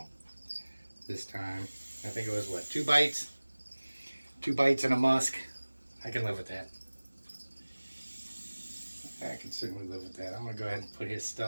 this time. I think it was what, 2 bites? 2 bites and a musk. I can live with that. I can certainly live with that. I'm going to go ahead and put his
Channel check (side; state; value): both; inverted; correlation -1.00